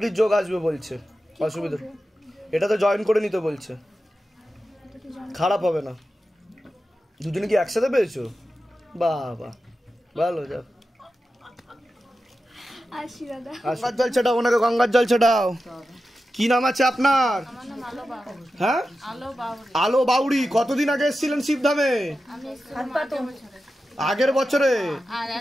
যোগ আসবে বলছে, অসুবিধা এটা তো জয়েন করে নিতে বলছে, খারাপ হবে না। দুজনে কি একসাথে পেয়েছো? বাবা ভালো, যাও আসি দাদা। গঙ্গার জল ছেটাও, ওনাকে গঙ্গার জল ছেটাও। কি নাম আছে আপনার? হ্যাঁ আলো বাউরি। কতদিন আগে এসেছিলেন শিবধামে? আগের বছরে।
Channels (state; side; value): normal; both; correlation 0.92